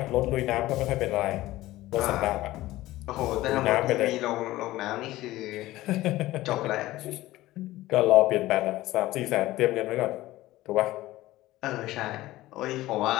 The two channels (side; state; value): right; quieter; 16.8 dB